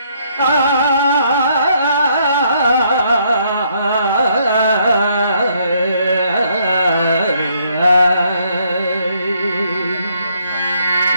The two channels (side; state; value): both; inverted; correlation -0.70